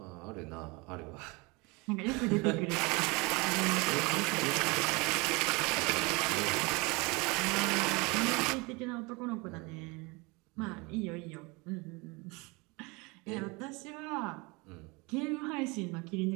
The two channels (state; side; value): quieter; left; 26.8 dB